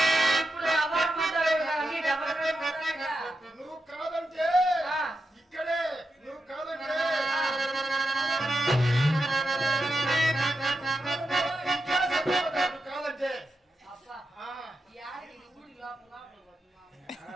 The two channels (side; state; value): both; normal; correlation 0.88